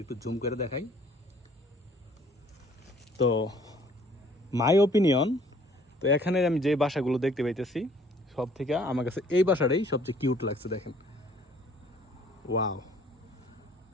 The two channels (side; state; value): both; normal; correlation 0.58